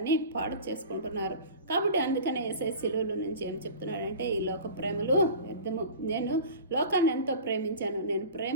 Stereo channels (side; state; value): both; inverted; correlation -0.37